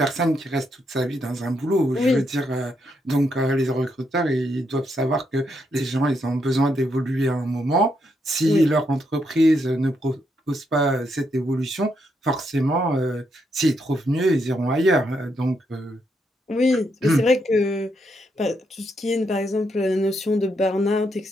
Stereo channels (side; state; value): both; normal; correlation 0.78